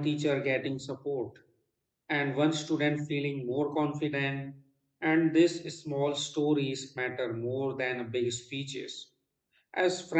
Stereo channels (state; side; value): identical; both; correlation 1.00